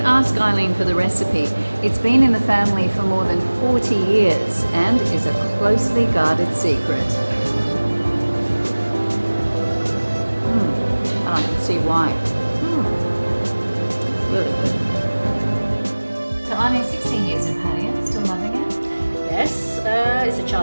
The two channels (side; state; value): both; inverted; correlation -1.00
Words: ask Eileen for the recipe. It's been in the family for more than 40 years and is a closely guarded secret. I can see why. Really good. So Eileen, 16 years in Pattaya, still loving it? Yes, it's a